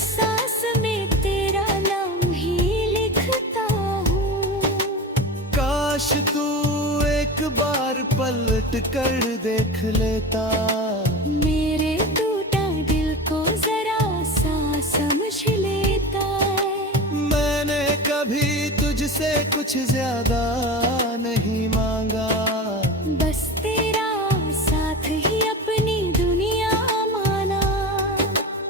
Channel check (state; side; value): normal; both; correlation 0.29